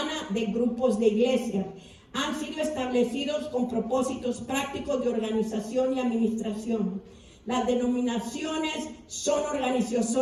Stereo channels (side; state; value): both; identical; correlation 1.00